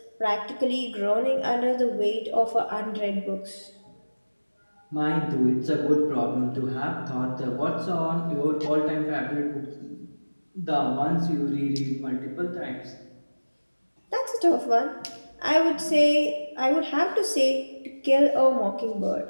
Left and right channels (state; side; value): inverted; both; correlation -1.00